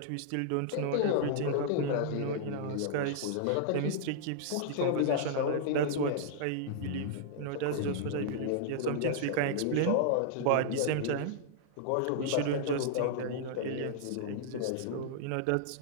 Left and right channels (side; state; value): both; different; correlation -0.01